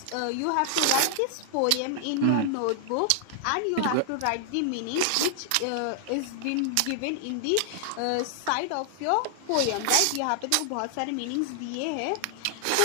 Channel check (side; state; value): both; different; correlation 0.00